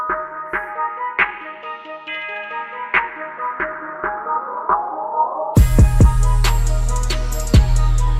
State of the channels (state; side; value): identical; both; correlation 1.00